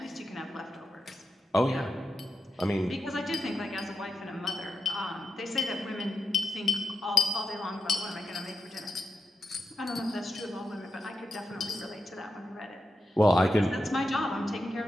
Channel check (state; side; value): normal; both; correlation 0.87